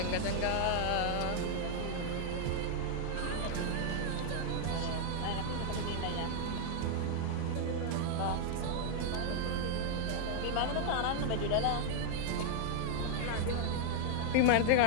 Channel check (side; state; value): both; different; correlation 0.00